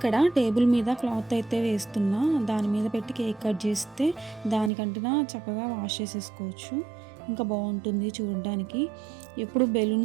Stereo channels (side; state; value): left; drops out; at 4.7 s